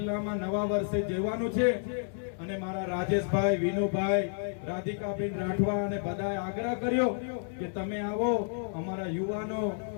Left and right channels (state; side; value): silent; right; 57 dB below the other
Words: નવા વર્ષે જવાનું છે અને મારા રાજેશભાઈ, વિનુભાઈ, રાધિકાબેન રાઠવા અને બધાએ આગ્રહ કર્યો કે તમે આવો, અમારા યુવાનો,